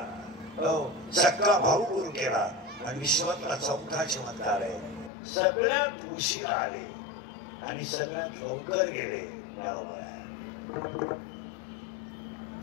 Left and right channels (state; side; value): drops out; right; at 5.1 s